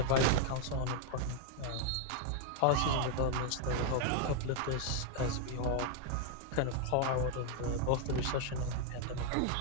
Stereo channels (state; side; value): different; both; correlation 0.00